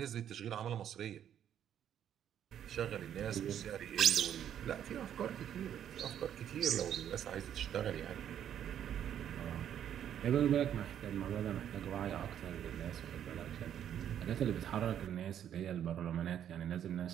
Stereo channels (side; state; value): left; quieter; 9.9 dB